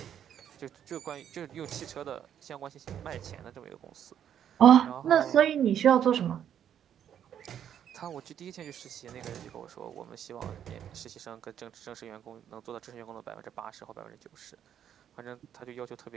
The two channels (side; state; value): left; quieter; 9.5 dB